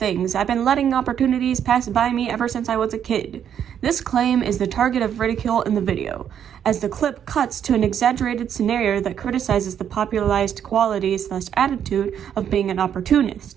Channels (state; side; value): quieter; left; 9.0 dB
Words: I've been letting opportunities pass by me ever since I was a kid." This claim is the target of ridicule in the video, as the clip cuts to an exaggerated scenario that criticizes the popularized quality/attitude of being an